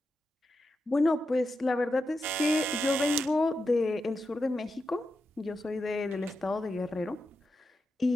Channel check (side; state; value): both; normal; correlation 0.88